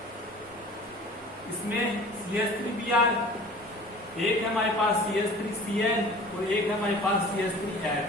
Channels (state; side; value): normal; both; correlation 0.44